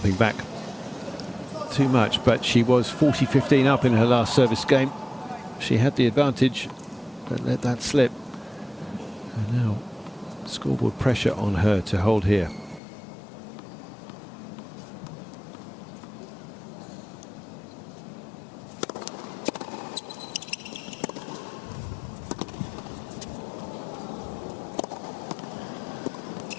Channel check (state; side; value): drops out; right; at 12.8 s